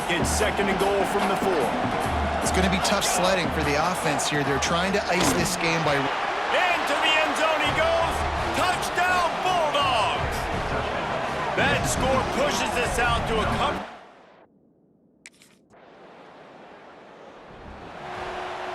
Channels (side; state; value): both; identical; correlation 1.00